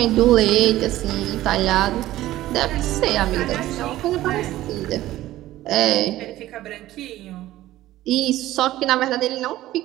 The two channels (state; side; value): quieter; left; 15.2 dB